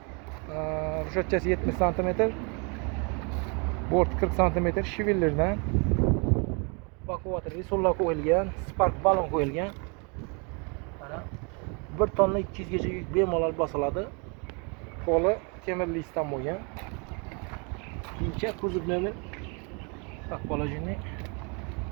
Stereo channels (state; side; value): quieter; left; 33.9 dB